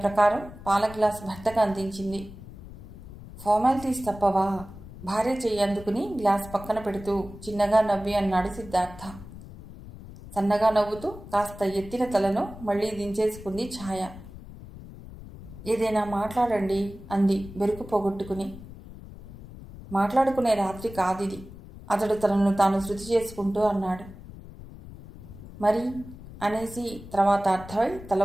పాల గ్లాస్ భర్తకు అందించింది. ఫార్మాలిటీస్ తప్పవా? భార్య చెయ్యి అందుకుని గ్లాస్ పక్కన పెడుతూ చిన్నగా నవ్వి అన్నాడు సిద్ధార్థ. సన్నగా నవ్వుతూ కాస్త ఎత్తిన తలను మళ్లీ దించేసుకుంది ఛాయ. ఏదైనా మాట్లాడండి అంది బెరుకు పోగొట్టుకుని. మాట్లాడుకునే రాత్రి కాదిది, అతడు తనను తాను శృతి చేసుకుంటూ అన్నాడు. మరి అనేసి తర్వాత అర్థమై తల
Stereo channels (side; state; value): left; noise; rumble, 15 dB below the sound